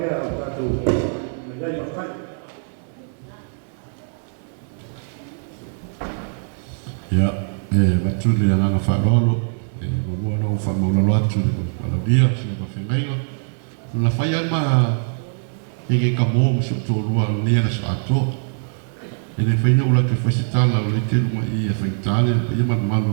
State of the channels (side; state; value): left; silent; digital silence